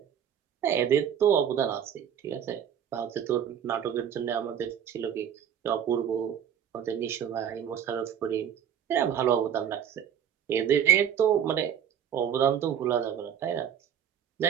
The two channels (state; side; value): quieter; left; 8.9 dB